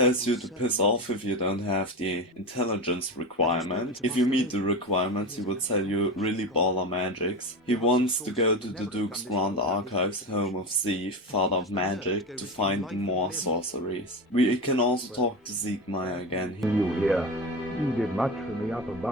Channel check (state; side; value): normal; both; correlation 0.22